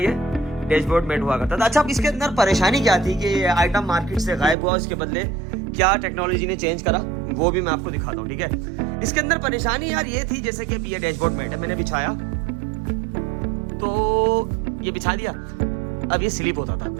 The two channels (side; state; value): left; drops out; at 4.5 s